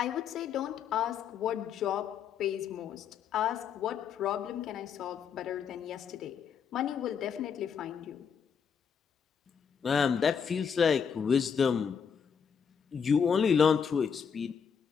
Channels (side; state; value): right; quieter; 7.0 dB